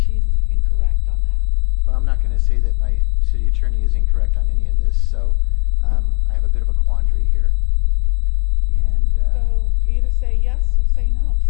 incorrect on that. Well, I'm not going to say that my city attorney is incorrect on any of this, so I have a bit of a quandary here. And so either say yes or say no.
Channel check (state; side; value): quieter; right; 38.8 dB